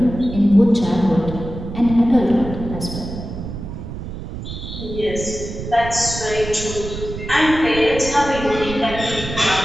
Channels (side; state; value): right; noise; rumble, 9 dB below the sound